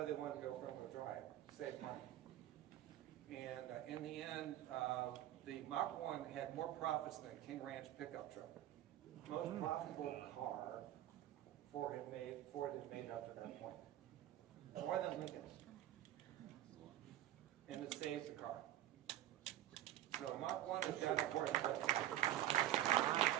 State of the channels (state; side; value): quieter; left; 12.8 dB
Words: they wanted to go front-wheel drive, save money. And in the end, the Mach 1 had more profits than a King Ranch pickup truck. Most profitable car Ford had made up to that point. More than Lincoln's. And it saved the car. So Mach 1 is that important. But